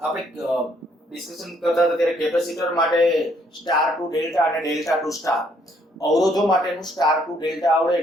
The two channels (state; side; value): normal; both; correlation 0.68